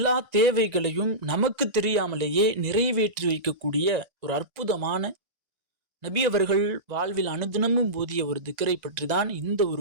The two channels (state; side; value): late; left; 1.6 ms